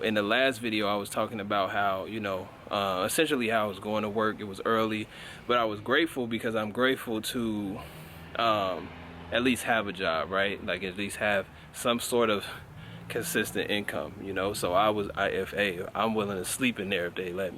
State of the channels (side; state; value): both; identical; correlation 1.00